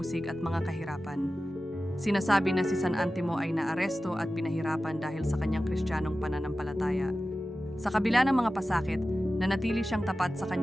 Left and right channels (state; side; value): normal; both; correlation 0.94